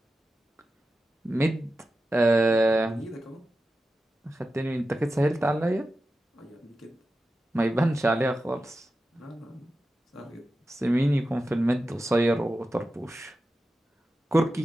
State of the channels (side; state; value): both; normal; correlation 0.92